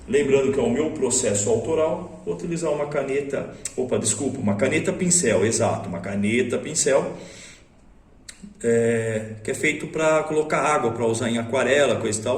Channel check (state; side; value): identical; both; correlation 1.00